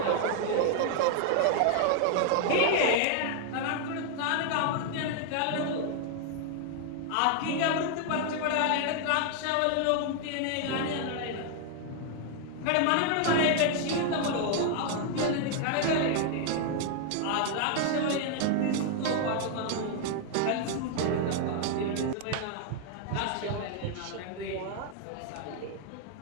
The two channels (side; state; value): both; different; correlation 0.00